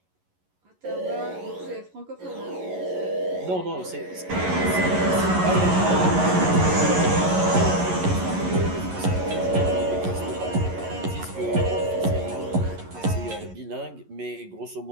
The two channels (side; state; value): left; late; 11 ms